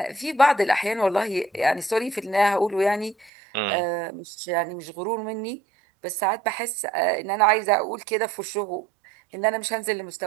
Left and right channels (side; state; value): left; drops out; at 3.3 s